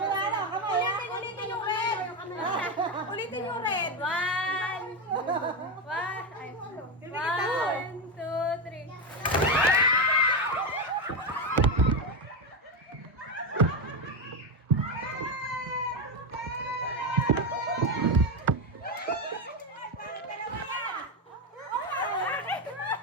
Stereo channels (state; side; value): normal; both; correlation 0.11